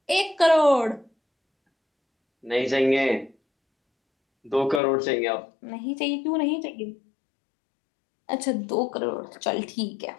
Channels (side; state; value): right; drops out; at 4.8 s